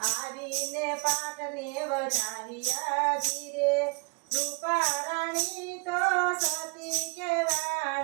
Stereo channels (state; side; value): quieter; left; 29.2 dB